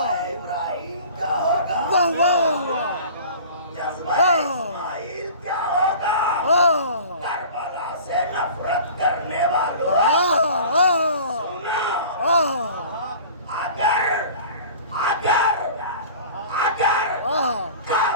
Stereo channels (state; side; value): inverted; both; correlation -0.42